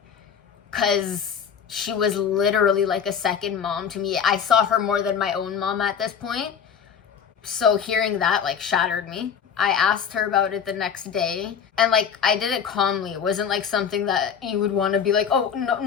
because she was literally like a second mom to me. I saw her more than my own mom at this point. So hearing that like shattered me. I asked her about it the next day, and like I did it calmly. It wasn't like something that you would want to be like, oh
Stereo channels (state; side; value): quieter; right; 7.4 dB